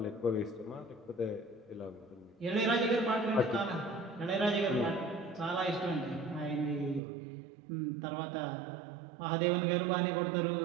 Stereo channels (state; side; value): drops out; left; at 7.0 s